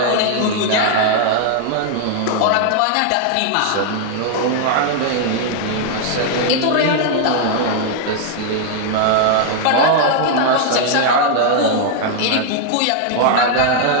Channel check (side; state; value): both; different; correlation 0.00